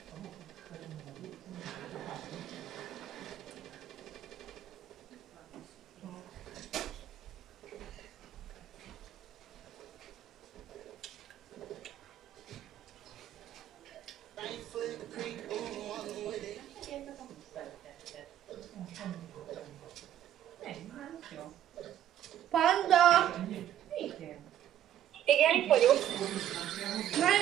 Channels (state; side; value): quieter; left; 11.3 dB